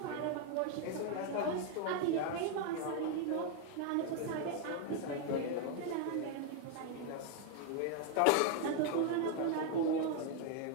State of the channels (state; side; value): different; both; correlation 0.01